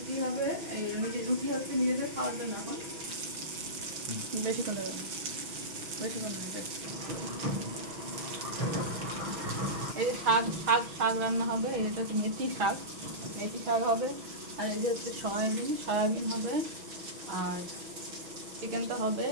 হবে। রুটি হচ্ছে নিজেদের খাওয়ার জন্য। এখন বেশিক্ষণ লাগবে, বেশিক্ষণ লাগবে। এই যে শাক শাক শাক রান্না হবে। এটা হচ্ছে মেথি শাক, মেথি শাক হবে। আর এই যে হচ্ছে সয়াবিন হবে। আর চিকেন তো হবে,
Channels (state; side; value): late; left; 6.1 ms